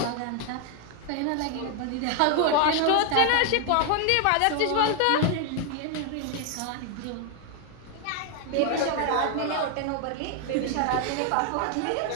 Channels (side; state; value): both; different; correlation 0.00